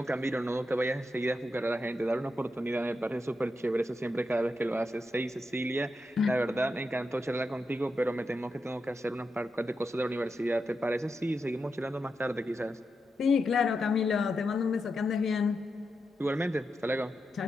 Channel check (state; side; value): normal; both; correlation 0.87